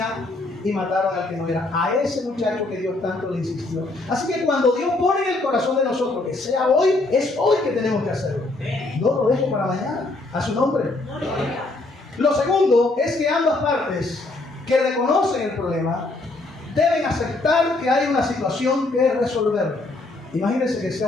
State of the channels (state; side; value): quieter; right; 3.0 dB